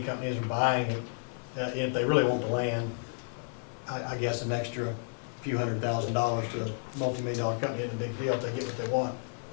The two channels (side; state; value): right; silent; 57 dB below the other